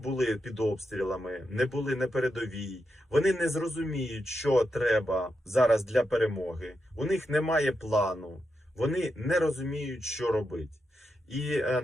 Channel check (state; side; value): normal; both; correlation 0.86